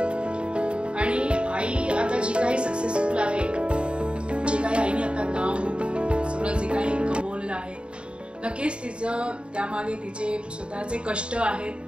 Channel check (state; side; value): late; left; 0.055 ms